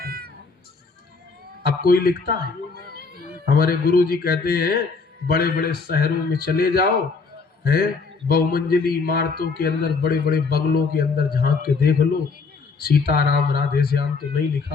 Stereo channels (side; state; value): right; quieter; 4.6 dB